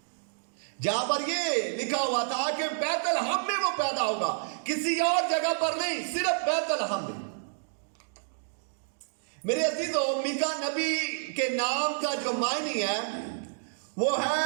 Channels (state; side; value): silent; left; digital silence